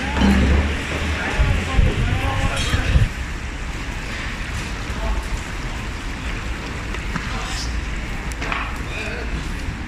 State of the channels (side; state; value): both; identical; correlation 1.00